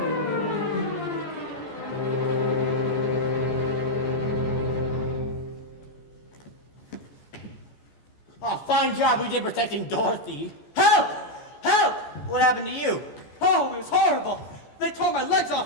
Oh, fine job we did protecting Dorothy. Help! Help! What happened to you? Oh, it was horrible. They tore my legs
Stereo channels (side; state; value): right; late; 14 ms